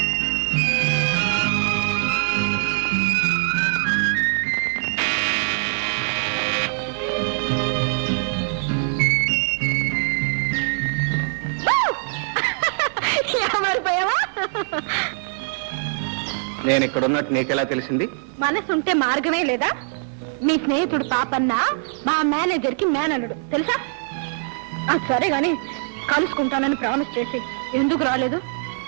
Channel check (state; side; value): silent; left; 64 dB below the other